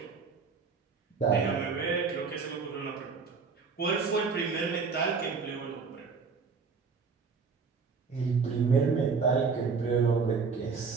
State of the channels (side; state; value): left; quieter; 5.1 dB